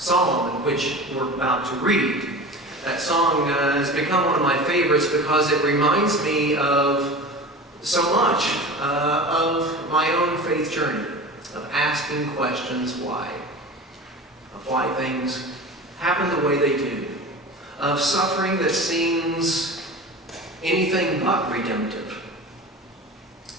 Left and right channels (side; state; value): both; normal; correlation 0.34